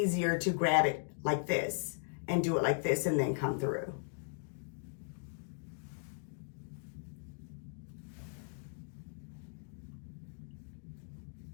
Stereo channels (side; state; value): right; silent; digital silence